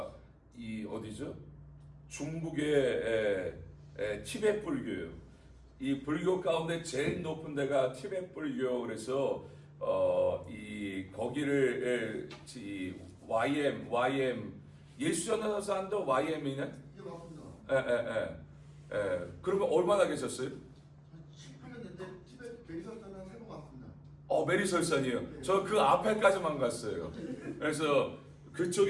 이 어디죠? 중국의 티베트 불교예요. 이 불교 가운데 제일 높은 데가 티베트 불교. 그래서 이 거기를 YM 예수 전도사도 YM이네? 예, 맞습니다. 그러면 얼마나 계셨어요? 18년 됐는데 티베트 베리설산은 3번 왔습니다. 메리설산이요. 네. 저 그 앞에까지만 갔어요. 그래서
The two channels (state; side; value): identical; both; correlation 1.00